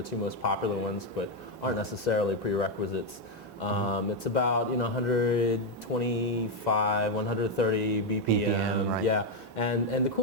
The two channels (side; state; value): both; normal; correlation 0.04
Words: two most popular ones, but aren't necessarily prerequisites. It's about 125, 130 BPM. Yeah, and the